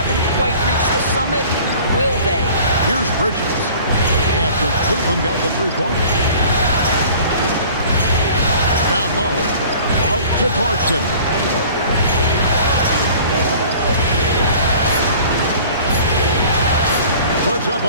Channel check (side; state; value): both; inverted; correlation -0.47